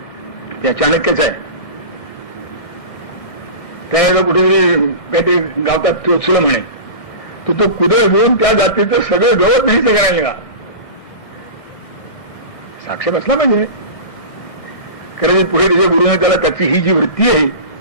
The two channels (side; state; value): right; late; 1.6 ms